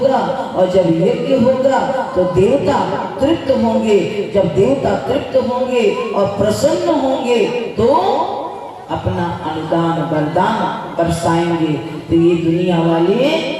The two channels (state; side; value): identical; both; correlation 1.00